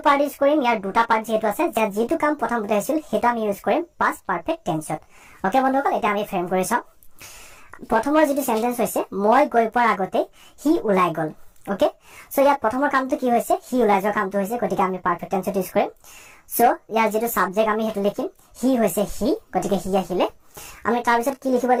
পাৰ্ট ইউজ কৰিম ইয়াৰ দুটা পাৰ্ট যেটো আছে যেটো কাম প্ৰথমতে হৈছিল হেতু আমি ইউজ কৰিম past perfect tense ওকে বন্ধুসকল এটা আমি ফ্ৰেম কৰি চাও প্ৰথমৰ যেটো সেন্টেন্স হৈছে মই গৈ পোৱাৰ আগতে হি ওলাই গ'ল ওকে সো ইয়াত প্ৰথমৰ কামটো কি হৈছে হি ওলাই যোৱা কামটো হৈছে গতিকে আমি পাৰফেক্ট টেন্স ইউজ কৰিম সো ইয়াৰ যেটো সাবজেক্ট আমি হেতু লিখিম হি হৈছে হি গতিকে হি আহিলে আমি তাৰ পিছত কি লিখিব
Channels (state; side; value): identical; both; correlation 1.00